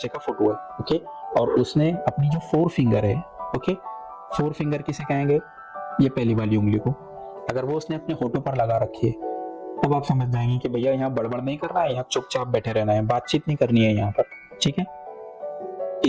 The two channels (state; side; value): identical; both; correlation 1.00